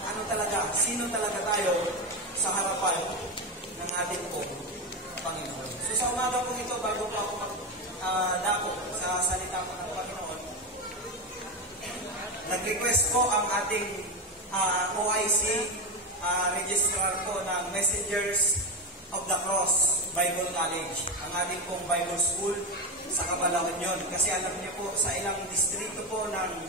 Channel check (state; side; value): normal; both; correlation 0.15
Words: ano talaga, sino talaga tayo sa harapan ng ating Panginoon. So, sa umaga po ito, bago po ako magdako sa salita po ng Panginoon, nag-request po ang ating OIC registrar po ng Messengers of the Cross Bible College, ang ating pong Bible School sa Cabalaon yun. Kasi alam niyo po, sa ilang distrito po ng